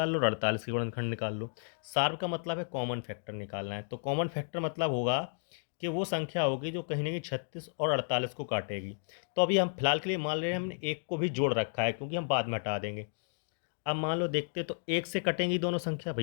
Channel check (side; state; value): right; silent; digital silence